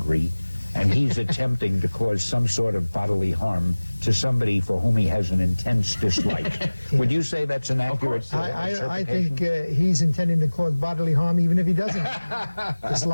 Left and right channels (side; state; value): both; inverted; correlation -1.00